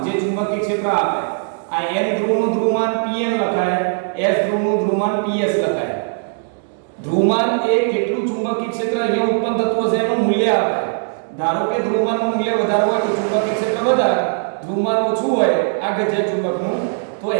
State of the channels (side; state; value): left; silent; digital silence